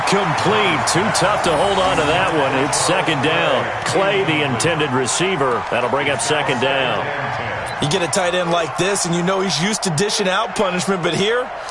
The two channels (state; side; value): identical; both; correlation 1.00